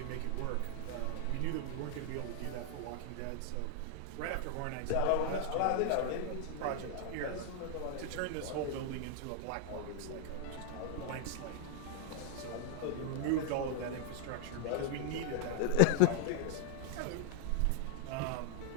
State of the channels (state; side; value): different; both; correlation 0.00